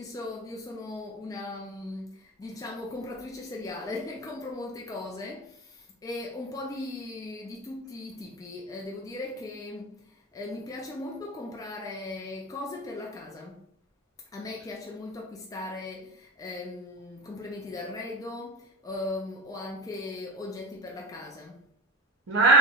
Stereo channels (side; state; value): both; normal; correlation 0.31